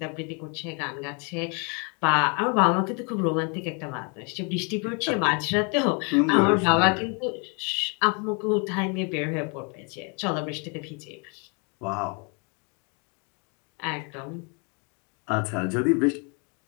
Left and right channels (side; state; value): right; quieter; 35.1 dB